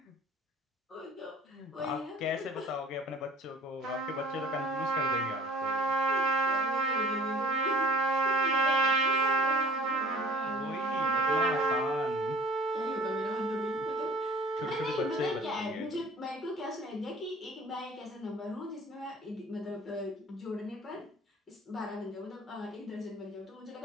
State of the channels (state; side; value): normal; both; correlation 0.49